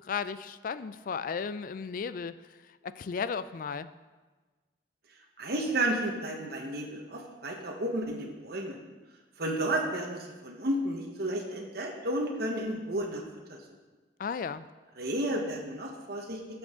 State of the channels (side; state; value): both; normal; correlation 0.25